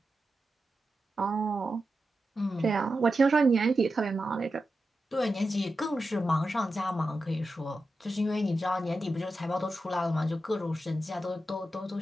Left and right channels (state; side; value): normal; both; correlation 0.90